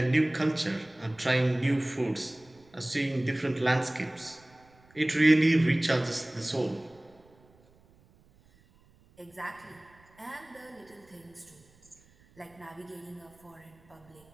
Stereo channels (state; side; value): noise; right; rumble, 29 dB below the sound